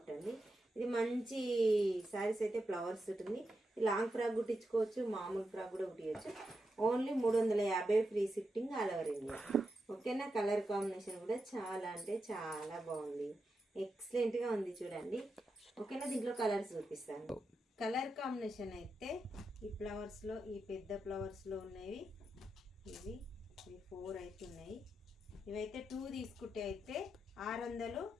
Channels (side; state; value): both; normal; correlation 0.87